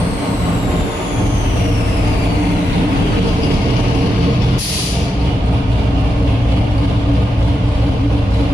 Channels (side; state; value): both; normal; correlation 0.86